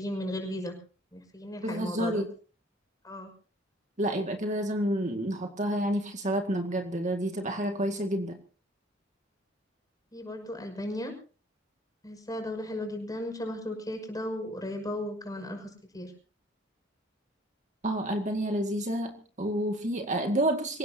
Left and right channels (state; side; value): normal; both; correlation 0.54